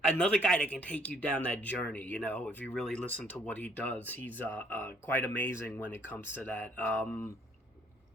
guy that can take you down that journey. If you really listen to what he does, he's quite amazing when it comes to that.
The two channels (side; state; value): both; normal; correlation 0.64